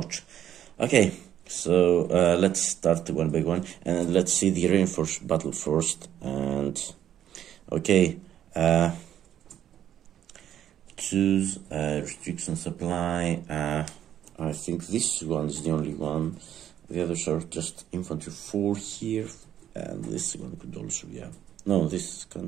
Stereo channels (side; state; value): left; quieter; 10.7 dB